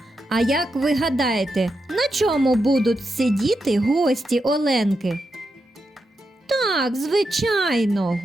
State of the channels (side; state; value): both; normal; correlation 0.86